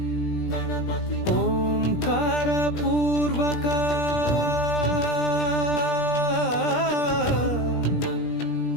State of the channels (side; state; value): right; late; 17 ms